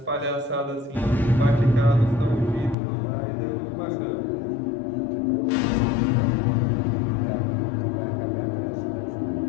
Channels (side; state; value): right; drops out; at 2.8 s